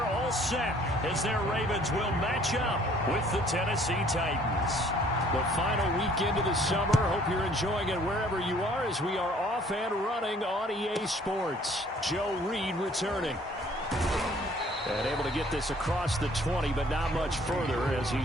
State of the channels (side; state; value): both; normal; correlation 0.58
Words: all set as their Ravens will match up with the Tennessee Titans. The final weekend of the summer. Hope you're enjoying it wherever you are as we are off and running on EA Sports. Joe Reed returning. And able to get this across the 20, but not much further as